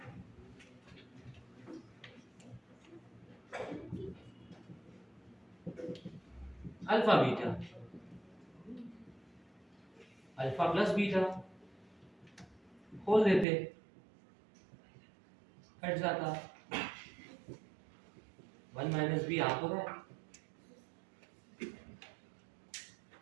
alpha beta alpha plus beta खोल देते कट जाता 1 माइनस बी आ तो रहा है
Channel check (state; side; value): drops out; left; at 13.5 s